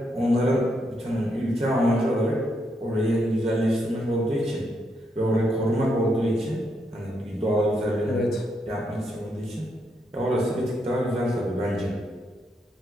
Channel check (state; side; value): normal; both; correlation 0.79